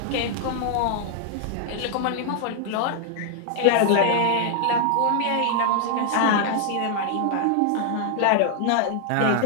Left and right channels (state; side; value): different; both; correlation 0.00